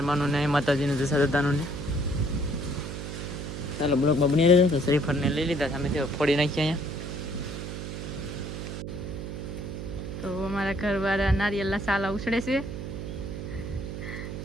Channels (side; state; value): right; noise; hum, 6 dB below the sound